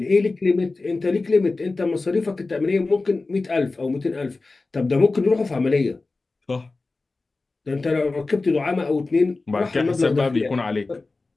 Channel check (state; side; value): quieter; right; 3.5 dB